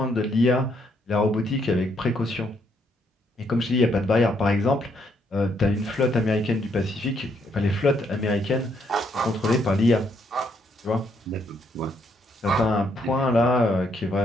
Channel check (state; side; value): normal; both; correlation 0.73